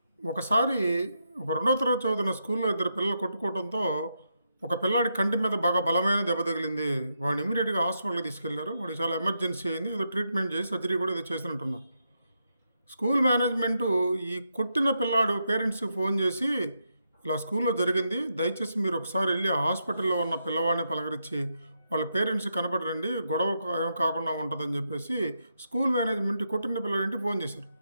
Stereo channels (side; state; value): both; inverted; correlation -0.82